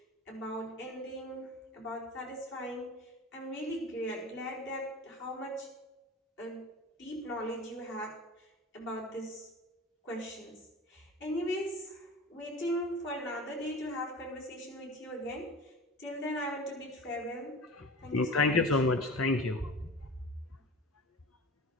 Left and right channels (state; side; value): normal; both; correlation 0.36